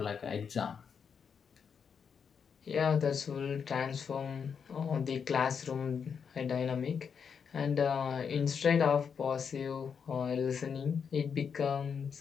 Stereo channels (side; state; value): right; quieter; 6.7 dB